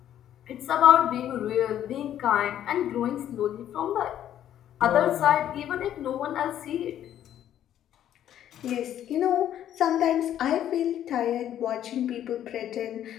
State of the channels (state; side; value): quieter; right; 11.1 dB